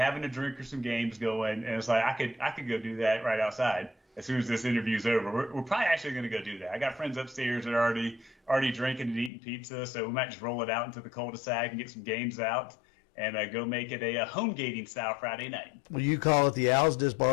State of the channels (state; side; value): drops out; right; at 9.3 s